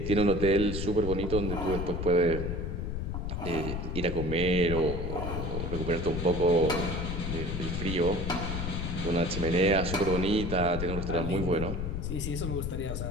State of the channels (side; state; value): left; noise; rumble, 3 dB below the sound